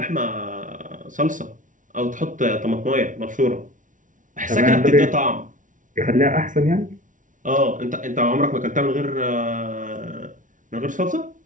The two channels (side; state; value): left; late; 0.38 ms